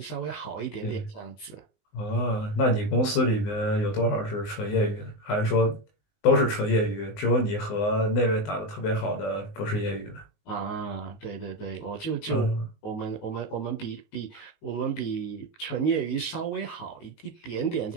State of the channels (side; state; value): right; late; 19 ms